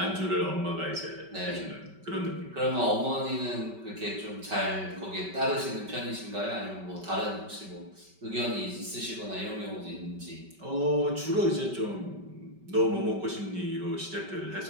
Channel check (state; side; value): late; left; 5.2 ms